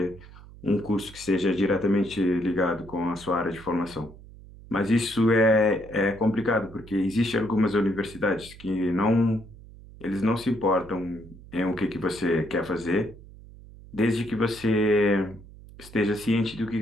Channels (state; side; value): noise; right; hum, 19 dB below the sound